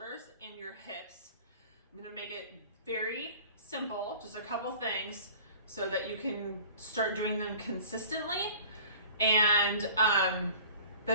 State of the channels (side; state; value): both; inverted; correlation -0.45